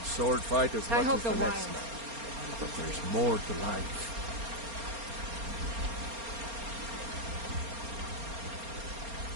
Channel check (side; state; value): left; late; 4.3 ms